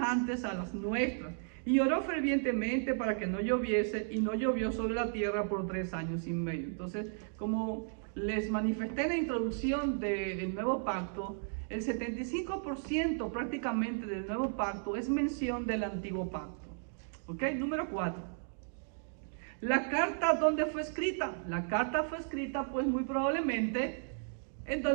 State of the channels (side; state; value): left; silent; digital silence